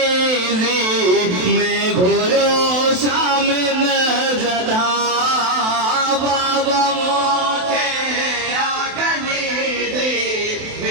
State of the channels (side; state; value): left; late; 27 ms